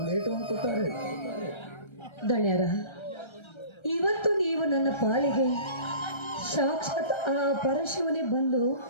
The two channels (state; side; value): late; right; 1.3 ms